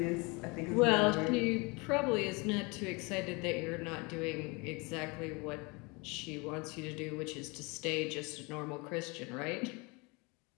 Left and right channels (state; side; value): quieter; right; 28.2 dB